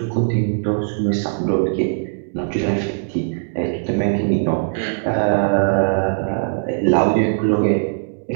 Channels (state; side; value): silent; left; 66 dB below the other